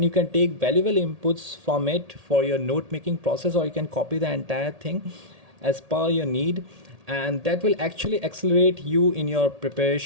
you can take valuable inputs from it for your note making process, or you can copy the entire thing as per your need, and that will actually accelerate you in your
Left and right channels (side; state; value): left; late; 1.8 ms